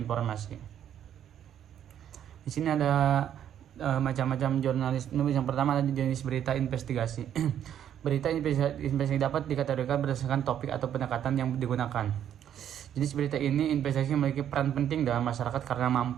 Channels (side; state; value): left; quieter; 10.0 dB